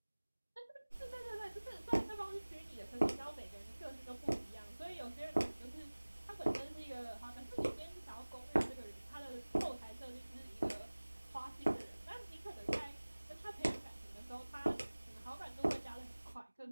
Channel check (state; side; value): inverted; both; correlation -1.00